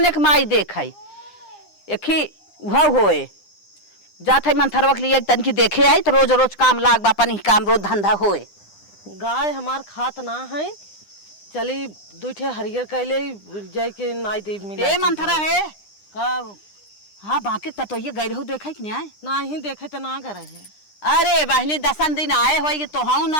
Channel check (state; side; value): late; right; 9.9 ms